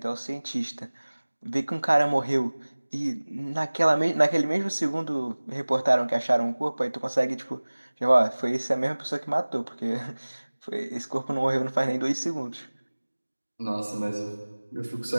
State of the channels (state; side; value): inverted; both; correlation -1.00